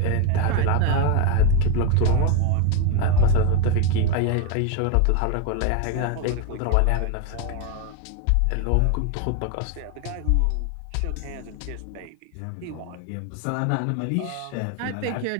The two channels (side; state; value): both; different; correlation 0.01